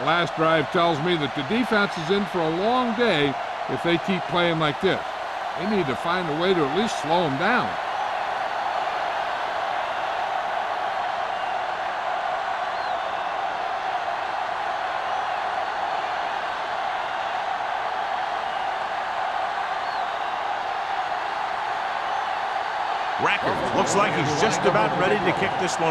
last drive tells me that the defense is in for a long day if they keep playing like this. They need to find a way to at least slow them down. Rackard looks like he's just about ready to kick this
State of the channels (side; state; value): both; identical; correlation 1.00